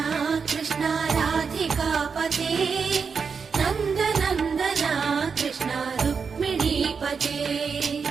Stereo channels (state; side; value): quieter; left; 5.7 dB